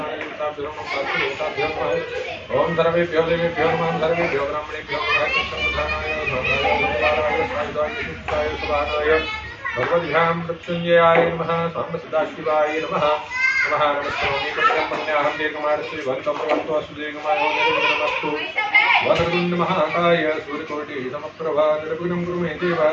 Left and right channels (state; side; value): identical; both; correlation 1.00